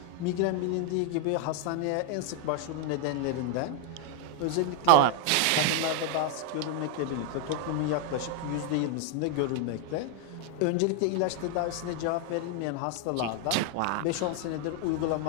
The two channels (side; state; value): both; different; correlation 0.00